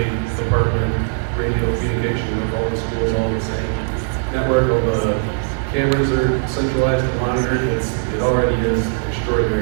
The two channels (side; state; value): left; silent; digital silence